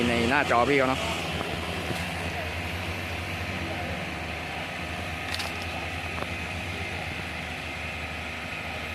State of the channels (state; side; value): identical; both; correlation 1.00